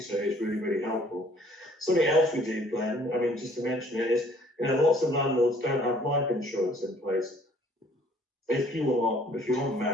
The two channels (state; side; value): normal; both; correlation 0.58